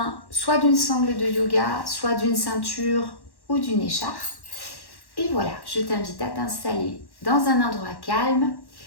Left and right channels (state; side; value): late; right; 1.1 ms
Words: soit d'une sangle de yoga, soit d'une ceinture ou d'une écharpe. Et voilà, je t'invite à t'installer dans un endroit calme